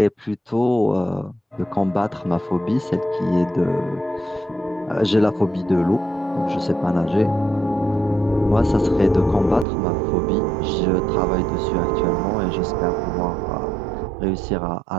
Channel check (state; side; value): drops out; left; at 9.7 s